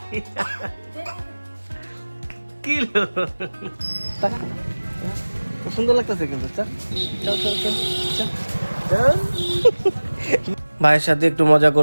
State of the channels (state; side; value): inverted; both; correlation -1.00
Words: কি সুন্দর লাগতেছে কিন্তু। ভাইয়ের সাথে একটু মজা